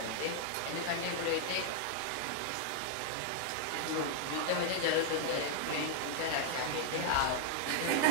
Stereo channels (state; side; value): different; both; correlation -0.01